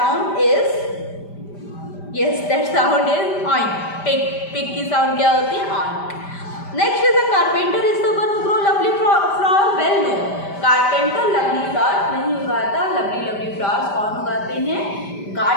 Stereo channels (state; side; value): late; right; 5.1 ms